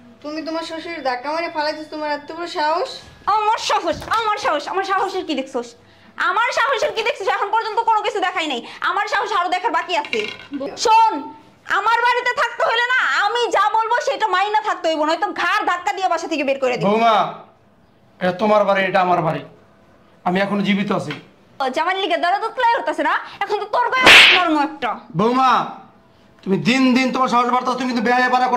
তুমি তোমার শ্বশুরের ধাক্কা মারে ফালাইছিস, তোমার এত বড় সাহস? আমার সাহস, আমার সাহস, আমার সাহসের কি দেখছস? আমার সাহসের কি দেখছিস? এখন পর্যন্ত কোনো কিছু দেখাই নাই। আমার সাহস আরো দেখার বাকি আছে। শোন, আমার বাড়িতে থাকতে হলে না, আমি যা বলবো সেটা মাইনা থাকতে হইব, নয়তো ঘাড় ধাক্কা দিয়ে বাসা থেকে বের করে দিব। বৌমা, এটা তোমার বাড়ি, এটা আমার বাড়ি। আমি এখনো জীবিত আছি। জামাল লিগে দরদ উতলাই হতাছে না, এখন তো তোর গায়ে নরম একটা। বৌমা, তুমি দিন দিন তোমার সাহস বাড়তাছো, তুমি কিন্তু বেহায়া পারা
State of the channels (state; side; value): identical; both; correlation 1.00